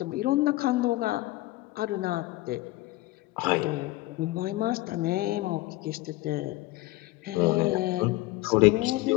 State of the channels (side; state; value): right; quieter; 19.0 dB